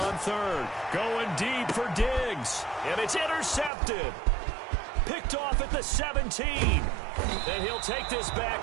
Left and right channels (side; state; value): left; drops out; at 3.7 s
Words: third. Going deep for Diggs. And it's intercepted. Picked off at the 17. And he'll take this